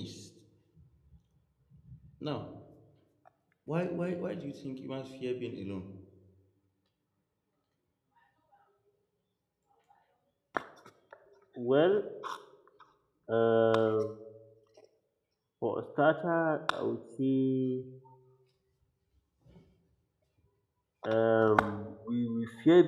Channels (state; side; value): identical; both; correlation 1.00